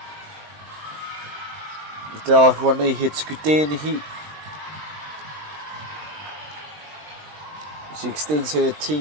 Te ahua nei he tuku tēnei. She extends her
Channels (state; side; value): late; left; 20 ms